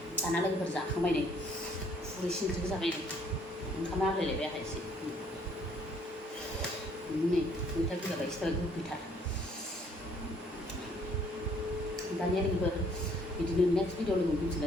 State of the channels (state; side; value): normal; both; correlation 0.63